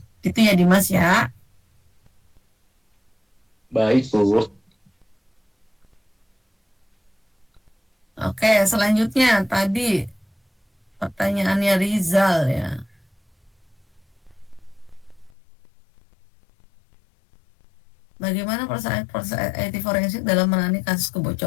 Gitu ya Dimas ya. Baik Bu. Oke, selanjutnya tadi pertanyaannya Rizal ya. Bagaimana proses IT forensik dalam menangani kasus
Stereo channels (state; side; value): drops out; right; at 15.3 s